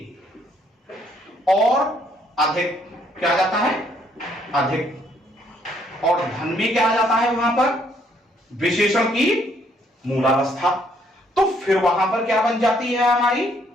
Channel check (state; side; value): normal; both; correlation 0.68